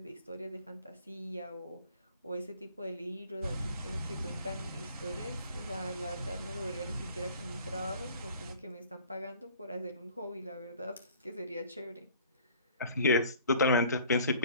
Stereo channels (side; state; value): both; inverted; correlation -0.51